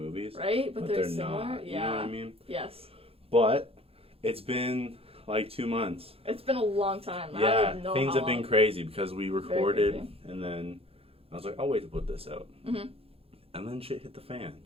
Right? But they're similar? not. Yeah. You know what I mean? Yes. But it's been, like, 2 months. It's been a long time. Yeah, I don't know things how have been long. crazy because we recorded, crazy. and then I was like, I'll wait to put this out. Mm-hmm. And then shit hit the fan.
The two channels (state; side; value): late; left; 0.28 ms